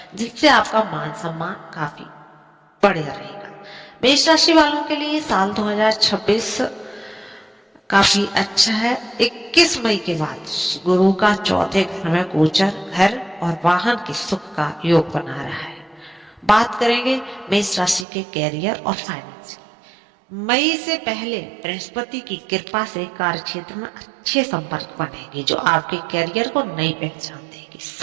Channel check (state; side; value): drops out; left; at 18.1 s